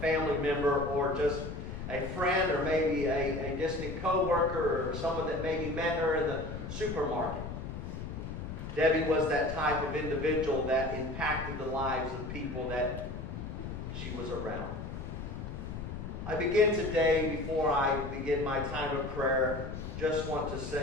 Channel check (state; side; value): noise; left; rumble, 7 dB below the sound